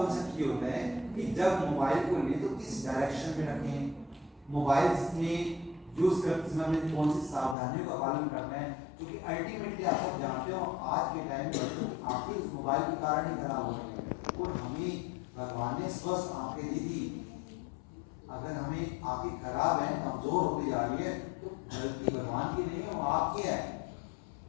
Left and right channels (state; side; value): drops out; right; at 7.6 s